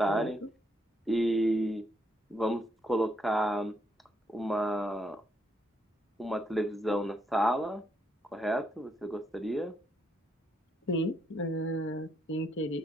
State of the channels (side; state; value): both; normal; correlation 0.76